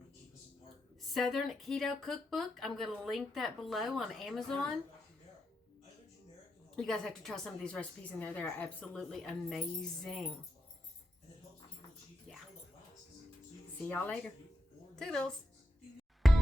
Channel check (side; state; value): both; normal; correlation 0.85